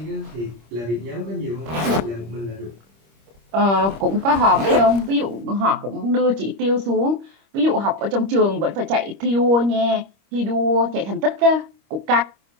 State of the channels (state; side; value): late; left; 25 ms